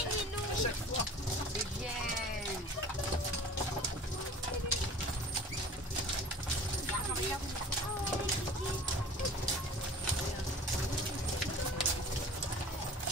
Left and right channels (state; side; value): normal; both; correlation 0.43